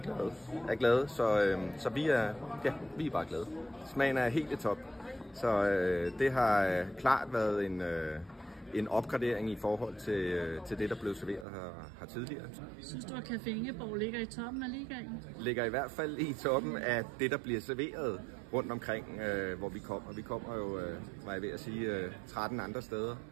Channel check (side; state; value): left; drops out; at 11.5 s